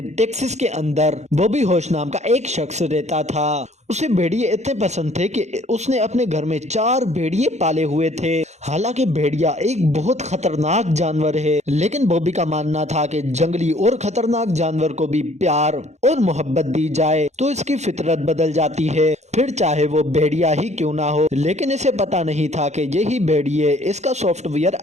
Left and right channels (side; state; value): left; late; 0.33 ms